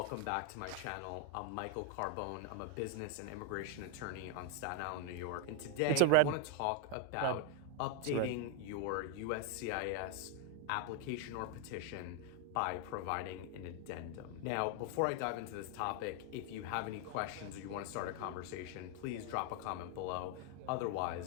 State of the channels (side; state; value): both; different; correlation 0.01